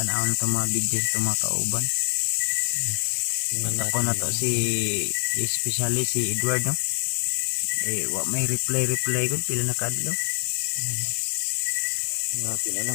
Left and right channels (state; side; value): silent; right; digital silence